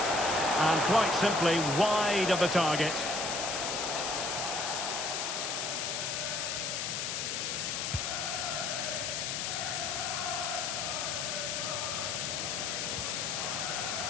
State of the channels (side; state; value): left; noise; hiss, 1 dB below the sound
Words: And quite simply wide of the target.